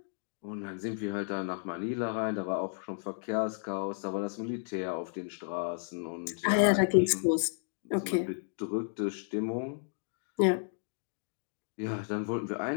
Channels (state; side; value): silent; right; digital silence